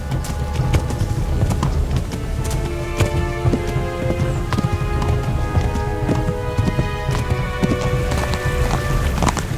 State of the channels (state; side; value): identical; both; correlation 1.00